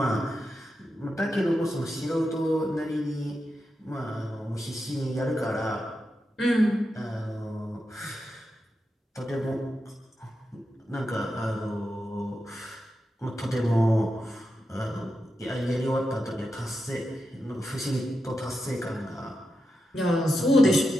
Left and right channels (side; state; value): both; normal; correlation 0.88